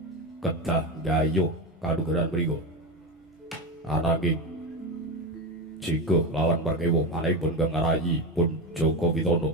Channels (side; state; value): both; normal; correlation 0.19